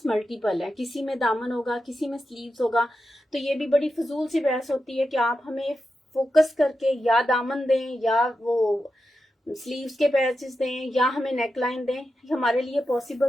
मल्टीपल है, किसी में दामन होगा, किसी में स्लीव्स होगा, तो ये भी बड़ी फजूल सी बहस होती है कि आप हमें फोकस करके या दामन दें या वो स्लीव्स के पैचेस दें या हमें नेकलाइन दें। हमारे लिए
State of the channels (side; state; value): both; normal; correlation 0.89